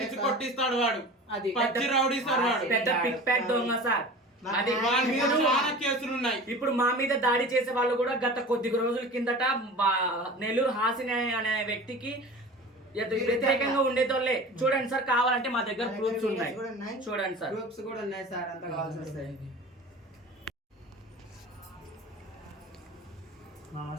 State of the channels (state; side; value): normal; both; correlation 0.37